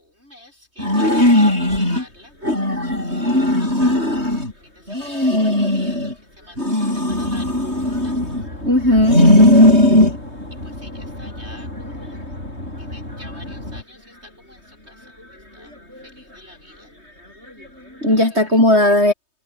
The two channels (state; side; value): late; left; 3.2 ms